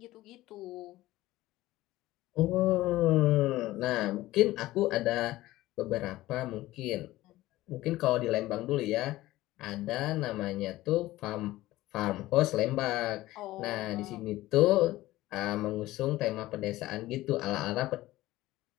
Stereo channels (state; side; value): quieter; right; 16.9 dB